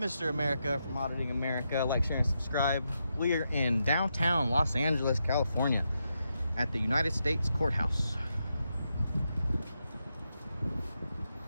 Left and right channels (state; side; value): inverted; both; correlation -0.84